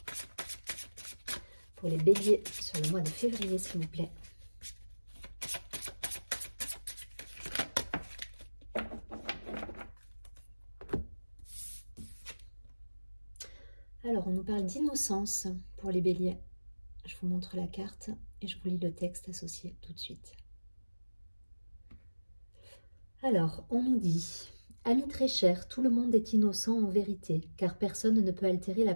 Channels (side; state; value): both; inverted; correlation -1.00